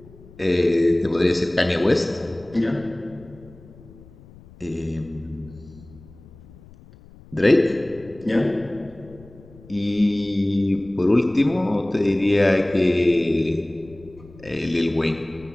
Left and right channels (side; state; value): left; noise; rumble, 22 dB below the sound